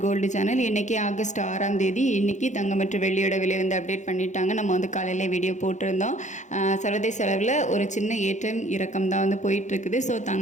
gold channel. இன்றைக்கி August 6ஆம் தேதி. இன்றைக்கி தங்கம் மற்றும் வெள்ளியோட விலை வந்து அப்டேட் பண்ணிட்டாங்க. நம்ம வந்து காலையில் வீடியோ போட்டிருந்தோம். சர்வதேச அளவில் ஒரு சின்ன ஏற்றம் இறக்கம் தான் வந்து போயிட்டுருக்குது. ஸோ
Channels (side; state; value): right; late; 0.35 ms